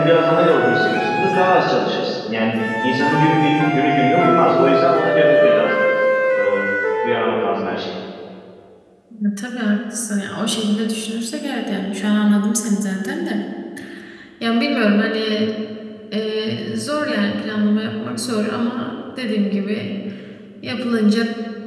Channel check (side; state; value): both; identical; correlation 1.00